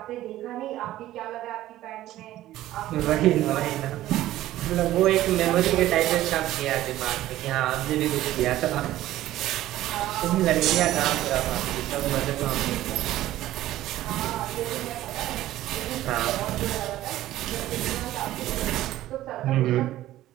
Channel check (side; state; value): left; quieter; 14.6 dB